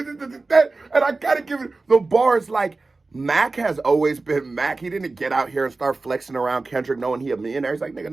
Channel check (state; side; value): quieter; left; 3.6 dB